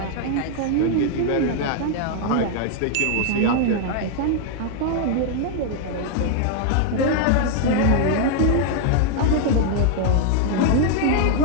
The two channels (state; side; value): different; both; correlation 0.00